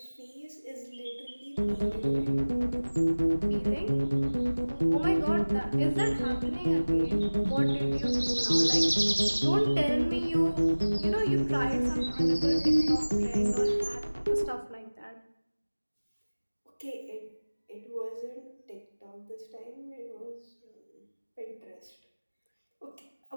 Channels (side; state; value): both; inverted; correlation -1.00